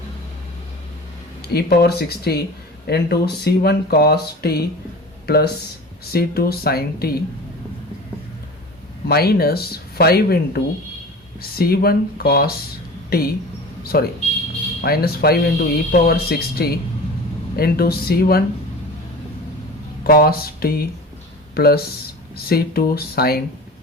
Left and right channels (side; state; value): both; normal; correlation 0.36